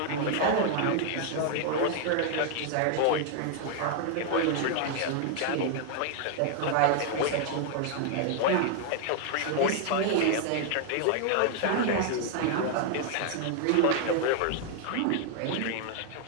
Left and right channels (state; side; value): different; both; correlation 0.00